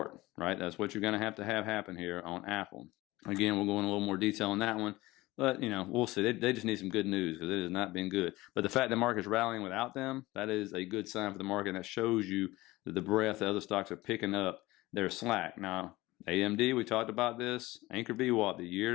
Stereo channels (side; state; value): right; quieter; 19.3 dB